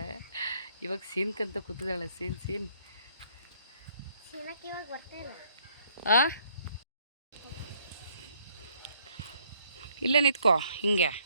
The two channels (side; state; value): both; inverted; correlation -0.66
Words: ಇವಾಗ ಸೀನ್ಕಂತ ಕೂತಿದ್ದಾಳೆ. ಸೀನ್ ಇವಾಗ ಬರ್ತಾ ಇಲ್ಲ. ಆ ಇಲ್ಲೇ ನಿಂತ್ಕೋ ಹಿಂಗೆ